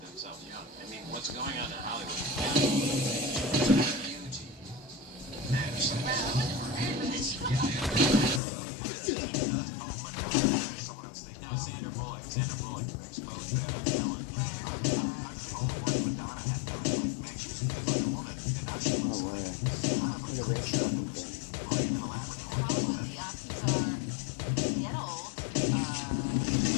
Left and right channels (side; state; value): right; drops out; at 8.4 s